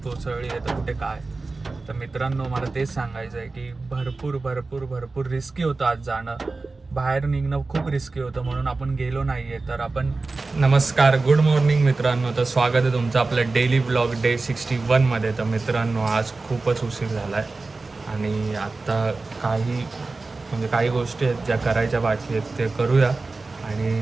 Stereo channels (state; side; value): quieter; left; 3.6 dB